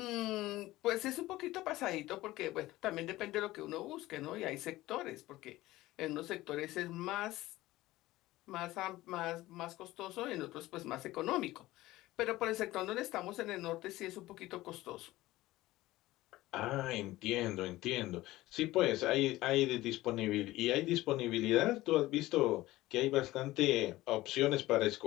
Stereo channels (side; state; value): right; quieter; 17.4 dB